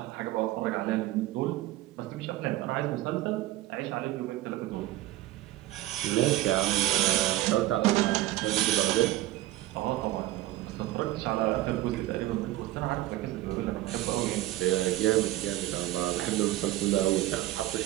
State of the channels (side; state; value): left; quieter; 15.7 dB